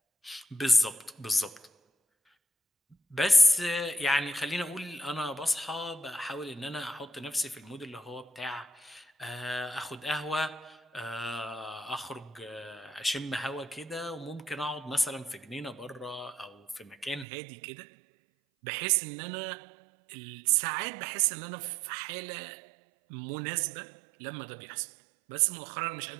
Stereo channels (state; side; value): drops out; left; at 17.2 s